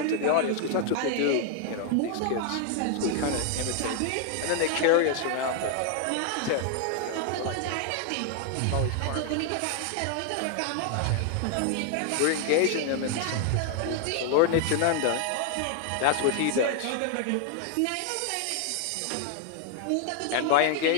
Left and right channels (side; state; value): both; different; correlation 0.00